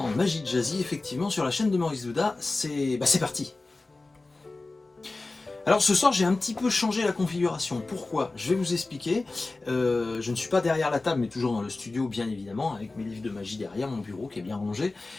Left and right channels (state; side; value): quieter; right; 3.3 dB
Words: Magie de Jazzy, effectivement, sur la chaîne de Maurice Douda, c'est parti. Alors ce soir j'ai un petit peu changé la configuration, pourquoi? Je vais vous expliquer, je ne suis pas derrière la table mais toujours dans le studio bien évidemment, avec mes livres de magie derrière, mon bureau qui est bien rangé,